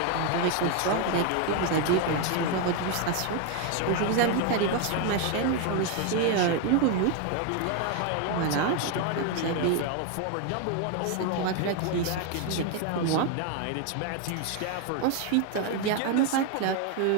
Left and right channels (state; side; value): different; both; correlation 0.01